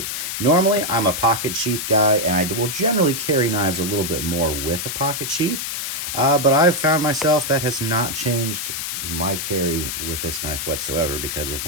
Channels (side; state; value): left; noise; hiss, 4 dB below the sound